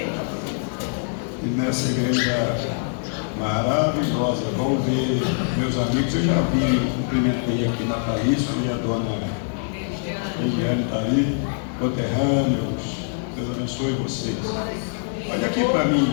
e nessa igreja maravilhosa. Vamos ver meus amigos, eu já vi, cumprimentei aqui na Thaís e a dona Eliane está aí, conterrâneos, Deus abençoe vocês. Olha aqui para mim,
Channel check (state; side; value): silent; right; digital silence